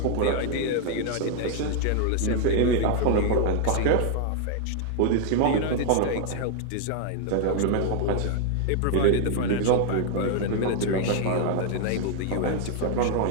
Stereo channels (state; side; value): different; both; correlation 0.00